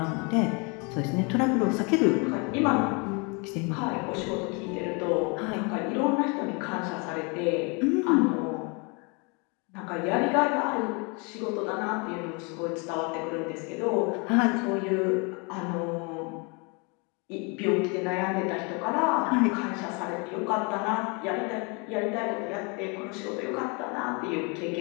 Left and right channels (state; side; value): quieter; right; 31.8 dB